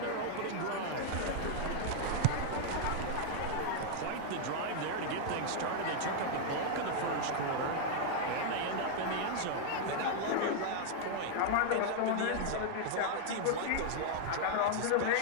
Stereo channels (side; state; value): both; different; correlation 0.00